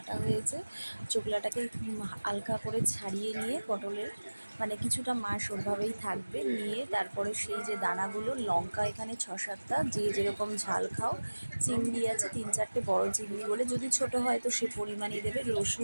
হয়েছে। চোকলাটাকে হালকা করে ছাড়িয়ে নিয়ে পটলের মানে কিছুটা মাস ওরভাবেই থাকবে, নিয়ে তারপরে সেই যে দানাগুলো, লঙ্কা এখানে 6-7টা, যে যেরকম ঝাল খাও, চিংড়ি আছে 3-4টে বড় চিংড়ি বলে, যদি ছোট হয় তো সে পরিমাণেই দেবে,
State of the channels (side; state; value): both; inverted; correlation -1.00